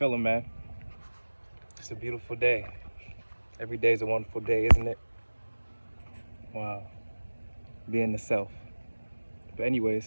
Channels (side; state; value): both; inverted; correlation -1.00